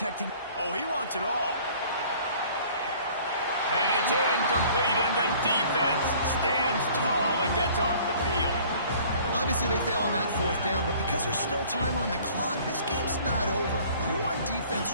Oh, he wants it all. And it's incomplete, and the defense stands tall and gets off the field. Obviously, they fail on that 4th down, but because there's still time on the clock, this game's not over. Who on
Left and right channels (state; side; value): inverted; both; correlation -0.52